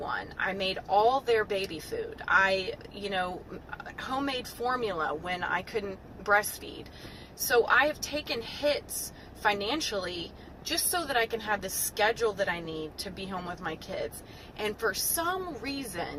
I made all their baby food. Homemade formula when I couldn't breastfeed. So I have taken hits financially just so that I can have the schedule that I need to be home with my kids. And for some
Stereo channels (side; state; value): both; identical; correlation 1.00